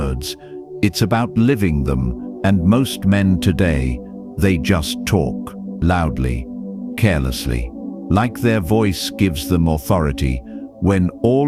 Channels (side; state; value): both; identical; correlation 1.00